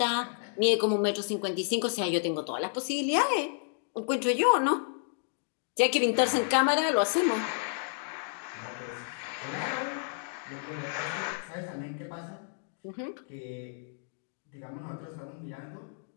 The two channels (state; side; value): silent; right; digital silence